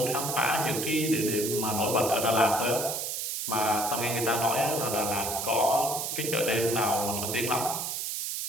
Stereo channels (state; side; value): noise; right; hiss, 3 dB below the sound